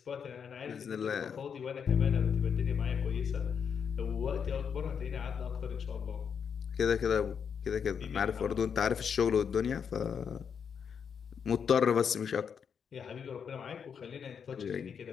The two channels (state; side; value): quieter; right; 7.0 dB